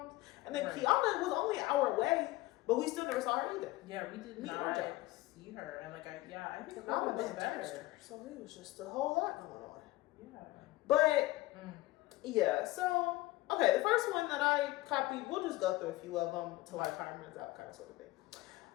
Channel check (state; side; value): quieter; right; 18.3 dB